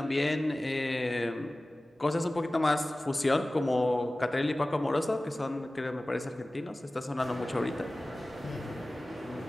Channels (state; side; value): normal; both; correlation 0.97